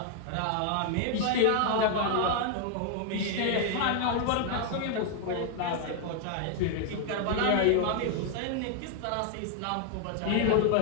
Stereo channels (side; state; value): both; different; correlation 0.00